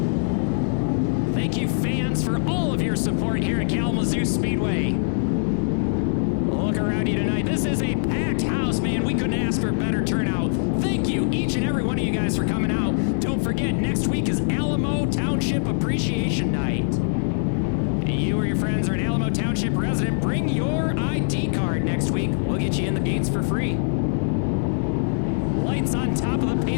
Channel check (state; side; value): silent; right; digital silence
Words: Support here at Kalamazoo Speedway. Look around you tonight. This is a packed house, man. We couldn't ask for a better turnout. Thank you, each and every one of you guys, for coming out. Don't forget, next week is Alamo Township Appreciation Night. You or your friends are an Alamo Township resident, bring your ID card next week. We'll get you in the gates for free. lights on top of the